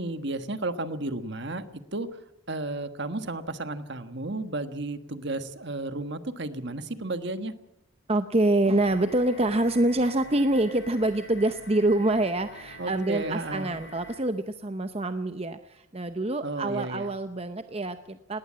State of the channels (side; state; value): both; normal; correlation 0.52